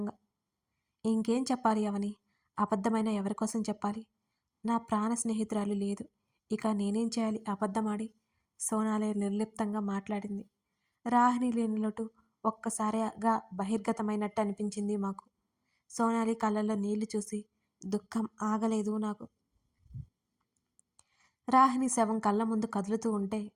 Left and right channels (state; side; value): identical; both; correlation 1.00